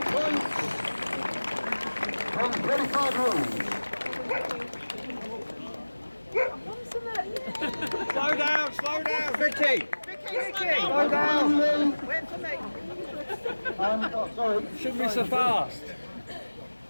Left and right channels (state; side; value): inverted; both; correlation -1.00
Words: points from 25 runs. Slow down, Vicky! Slow down! Wait for me. Sorry. Shouldn't be so fast.